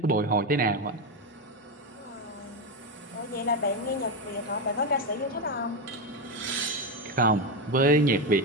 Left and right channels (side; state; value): both; normal; correlation 0.11